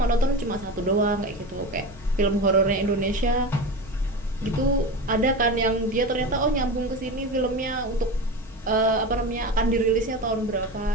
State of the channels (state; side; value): normal; both; correlation 0.25